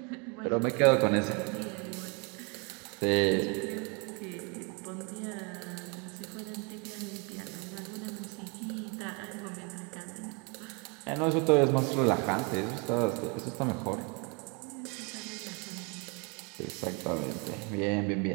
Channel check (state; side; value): quieter; left; 32.7 dB